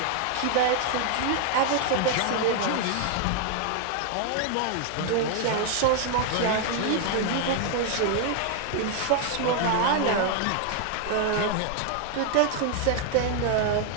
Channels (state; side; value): different; both; correlation 0.00